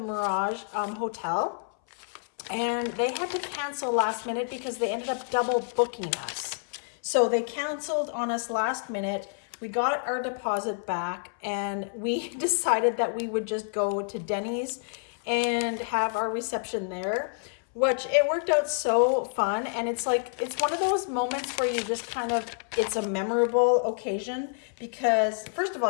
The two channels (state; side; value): silent; right; 59 dB below the other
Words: Mirage Hotel, and they had to cancel last minute because they ended up double booking us. So they canceled on us last minute. We got our deposit back, and we decided that we would just go to Denny's and have our reception there, which it worked out so fun. And it's like, it's one of those moments where you just kind of, it's a memorable occasion, because first of